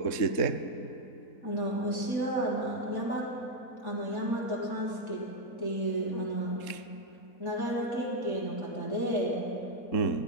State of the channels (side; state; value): right; late; 3.7 ms